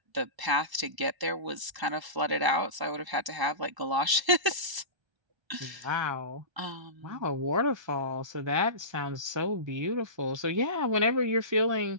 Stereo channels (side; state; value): left; late; 1.3 ms